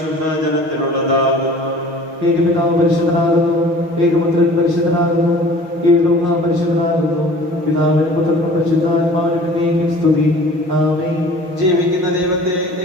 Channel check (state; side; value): late; left; 6.2 ms